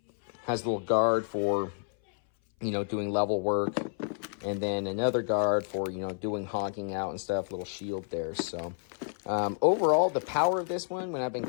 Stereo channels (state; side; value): silent; right; 58 dB below the other